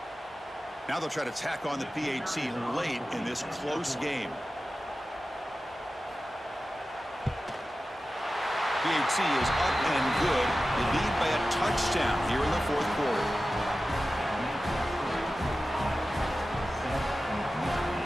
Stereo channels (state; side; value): normal; both; correlation 0.94